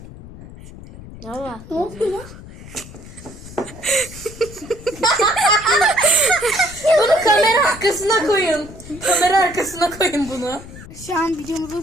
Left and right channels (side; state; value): left; noise; rumble, 16 dB below the sound